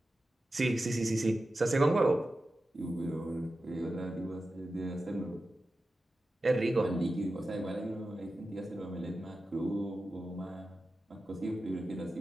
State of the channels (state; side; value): normal; both; correlation 0.93